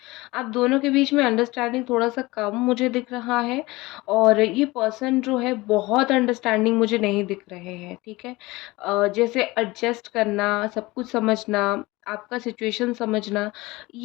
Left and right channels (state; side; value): quieter; right; 21.2 dB